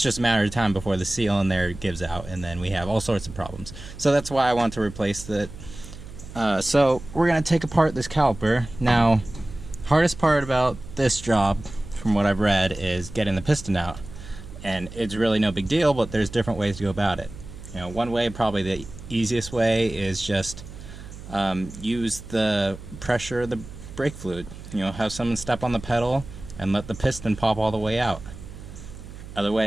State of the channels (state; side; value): noise; right; hum, 14 dB below the sound